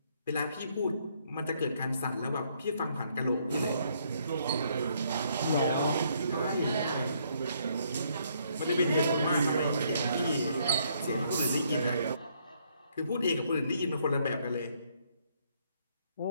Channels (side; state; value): both; inverted; correlation -0.69